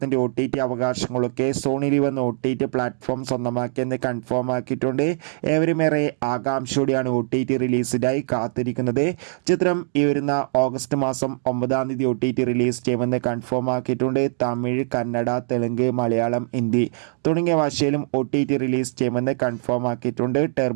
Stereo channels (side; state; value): left; silent; digital silence